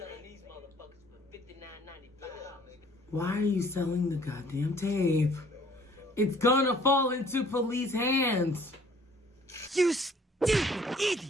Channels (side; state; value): both; normal; correlation 0.56